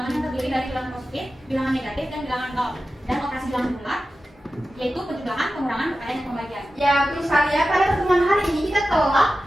yang terdiri dari bilangan positif, bilangan negatif, dan bilangan nol. Dan operasi bilangan bulat yaitu penjumlahan, pengurangan, perkalian, dan pembagian. Ya, betul sekali ya. Pada pertemuan hari ini kita telah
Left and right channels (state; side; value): normal; both; correlation 0.93